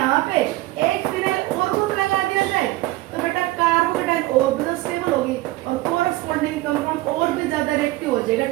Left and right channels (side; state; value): left; quieter; 18.5 dB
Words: पे एक फिनाइल और ग्रुप लगा दिया जाए तो बेटा कार्बोकैटायन और भी स्टेबल होगी और कोरस्पॉन्डिंग कंपाउंड और भी ज्यादा रिएक्टिव हो जाएगा